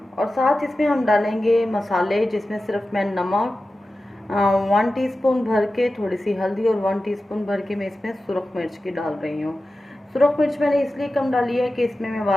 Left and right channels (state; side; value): normal; both; correlation 0.94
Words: और साथ इसमें हम डालेंगे मसाले, जिसमें सिर्फ मैं नमक 1 टीस्पून भर के, थोड़ी सी हल्दी और 1 टीस्पून भर के मैं इसमें सुरख मिर्च की डाल रही हूँ। सुरख मिर्च मैंने इसलिए कम डाली है कि इसमें मैं